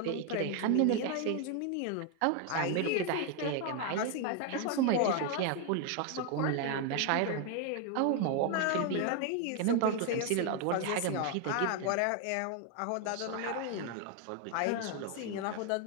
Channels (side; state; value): both; different; correlation 0.01